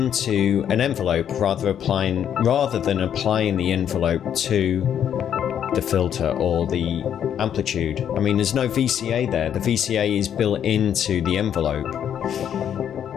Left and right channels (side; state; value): right; quieter; 9.2 dB